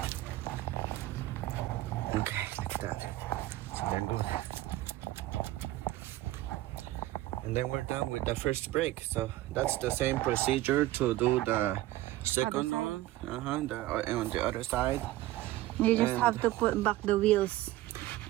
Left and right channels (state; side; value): quieter; left; 16.1 dB